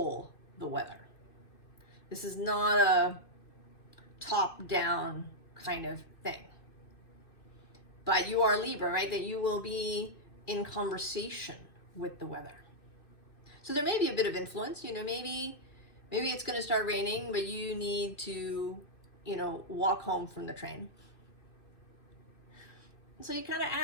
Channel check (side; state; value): right; late; 2.6 ms